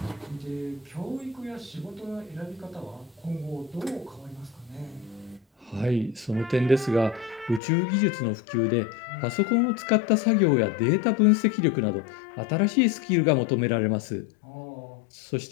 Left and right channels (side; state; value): right; drops out; at 7.6 s